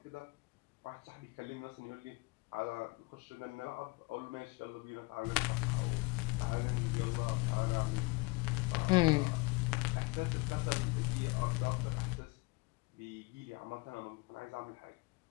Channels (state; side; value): quieter; right; 26.6 dB